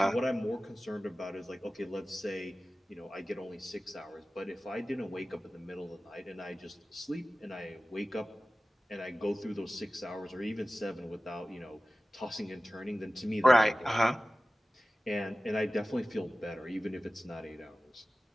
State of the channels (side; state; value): both; normal; correlation 0.96